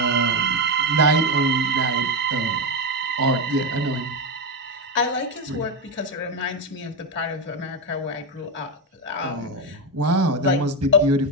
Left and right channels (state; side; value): normal; both; correlation 0.10